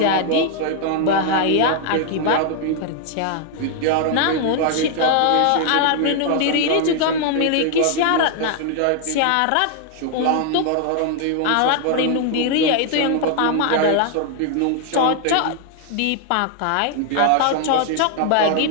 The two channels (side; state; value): both; different; correlation 0.00